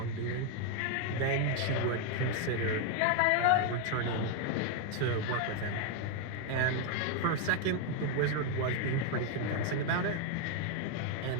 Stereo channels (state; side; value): different; both; correlation 0.01